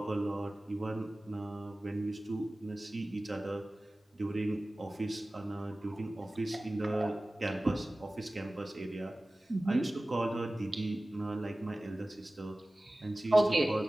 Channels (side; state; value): both; normal; correlation 0.97